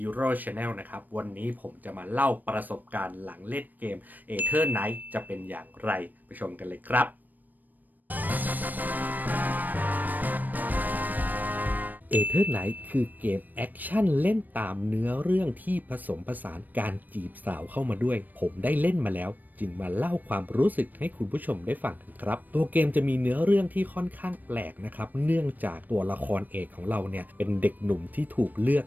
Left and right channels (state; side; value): late; left; 0.087 ms